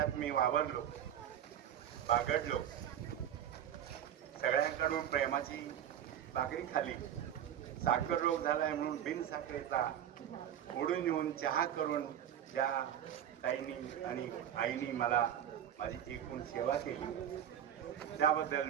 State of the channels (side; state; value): left; quieter; 10.2 dB